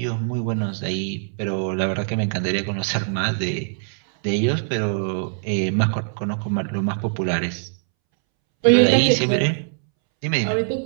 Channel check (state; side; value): silent; left; 64 dB below the other